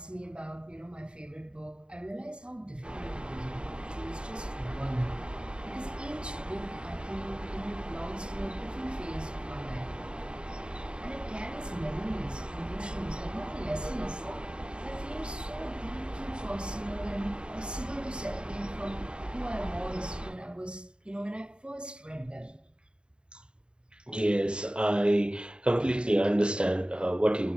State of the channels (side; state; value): left; late; 0.052 ms